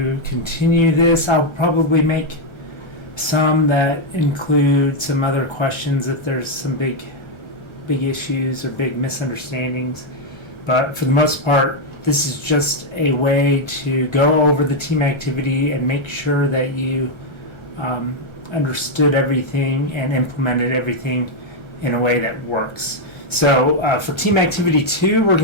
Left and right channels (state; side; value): late; right; 1.3 ms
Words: continue this. I'll probably make some that include some other questions if there's some big issues or big misunderstandings, but for the most part this is just a way to go over the team activity and make sure that you understood everything and implemented everything in a way that works. So for team activity 2, we're